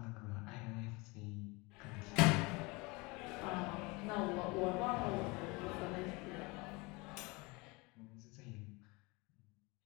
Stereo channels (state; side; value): quieter; right; 25.8 dB